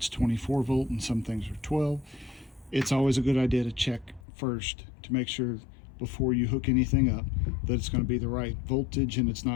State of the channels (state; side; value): drops out; right; at 4.2 s